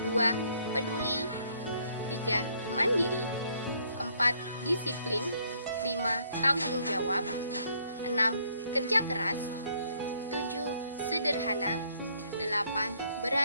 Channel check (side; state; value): both; inverted; correlation -0.66